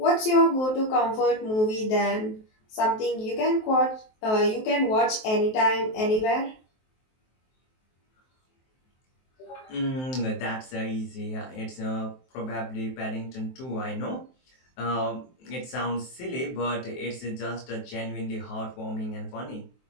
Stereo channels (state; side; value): late; right; 23 ms